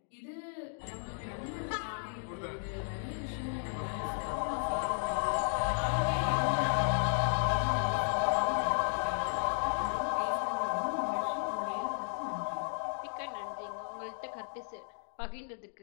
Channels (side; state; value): right; silent; digital silence